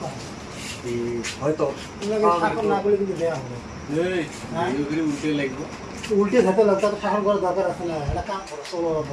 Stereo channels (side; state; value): both; identical; correlation 1.00